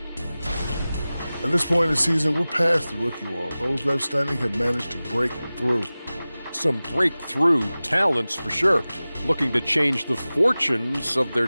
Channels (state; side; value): inverted; both; correlation -0.97